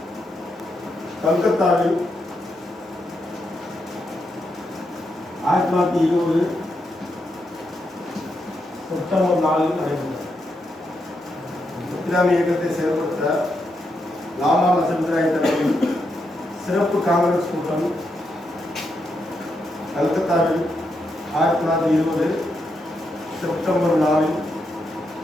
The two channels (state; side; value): normal; both; correlation 0.82